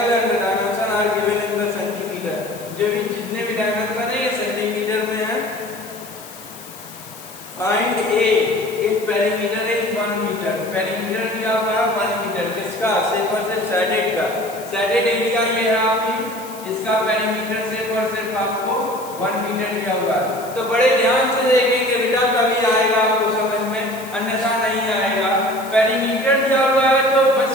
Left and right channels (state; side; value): noise; left; hiss, 17 dB below the sound